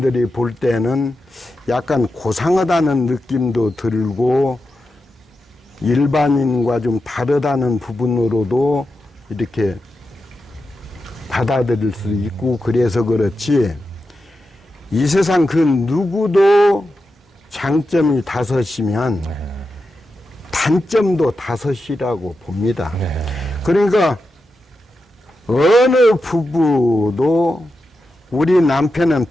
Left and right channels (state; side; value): normal; both; correlation 0.89